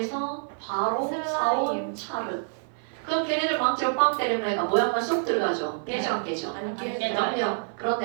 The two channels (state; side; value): silent; left; 56 dB below the other